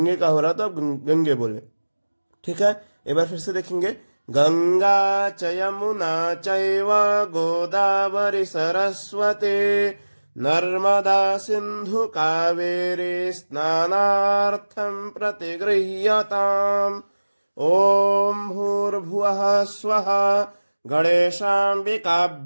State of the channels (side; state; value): both; inverted; correlation -1.00